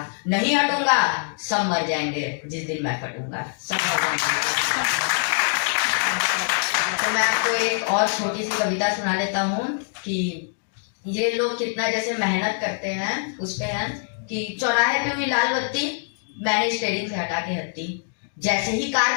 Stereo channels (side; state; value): right; silent; digital silence